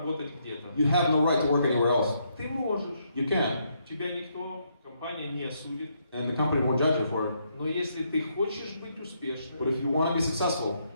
где-то. you have no right to work anywhere else. Ты можешь. You can, Тебя никто, компания не осудит. and the company won't judge you for it. Но если ты хочешь быть But успешным, if you want to be successful,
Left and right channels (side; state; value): both; inverted; correlation -0.75